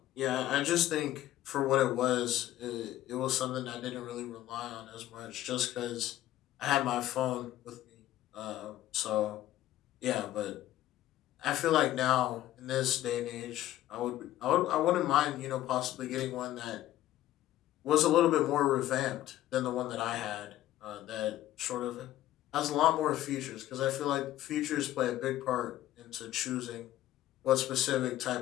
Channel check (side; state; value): right; quieter; 14.0 dB